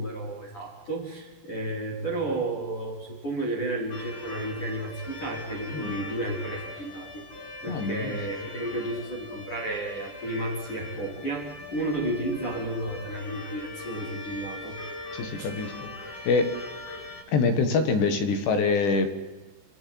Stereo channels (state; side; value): late; right; 14 ms